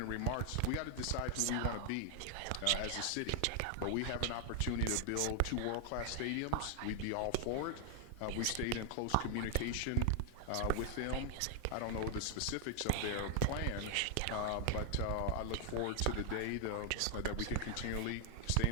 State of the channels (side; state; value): both; different; correlation 0.00